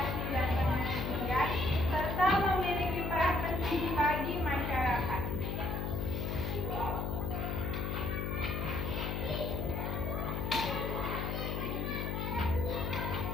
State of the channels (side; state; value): left; noise; hum, 1 dB below the sound